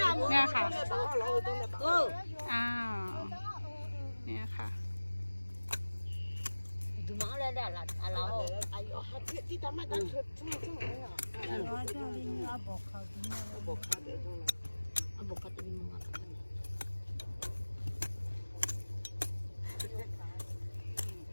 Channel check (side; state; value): both; inverted; correlation -1.00